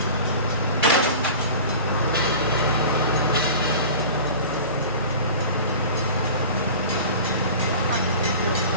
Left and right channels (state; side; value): inverted; both; correlation -0.38